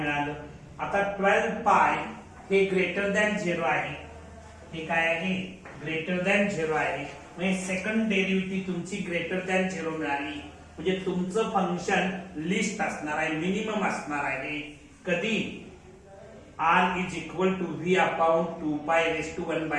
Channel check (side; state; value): both; identical; correlation 1.00